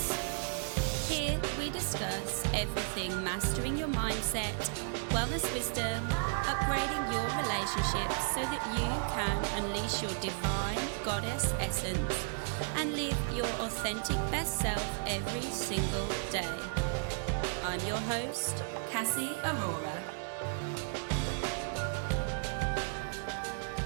Here we discuss everything mastering your mindset, wellness wisdom, upgrading your relationships so that you can unleash your divine goddess essence and live your authentic best self every single day. I'm your host, Cassie Aurora.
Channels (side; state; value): left; silent; digital silence